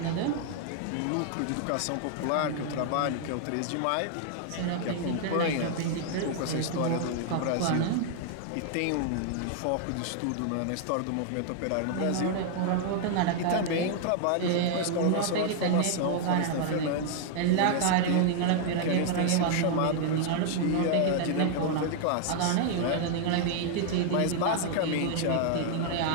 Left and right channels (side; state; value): both; different; correlation 0.00